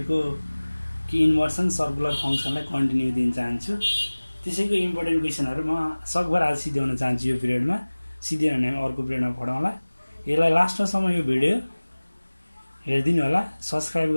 कि इन्भर्सन सर्कुलर फङ्सनलाई कन्टिन्यू दिन चाहन्छु। त्यसैको इम्पोर्टेन्ट क्वेसनहरू म सकभर आज सिध्याउन चाहन्छु। यो पिरियडमा सिधै भने अर्को पिरियडमा पढाउँला। यसलाई लास्टसम्म यो भिडियो हेरिदिनु होला, सब्सक्राइब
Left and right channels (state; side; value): inverted; both; correlation -1.00